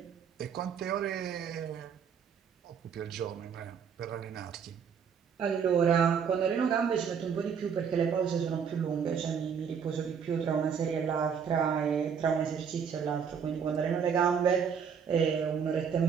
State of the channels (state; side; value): quieter; left; 7.0 dB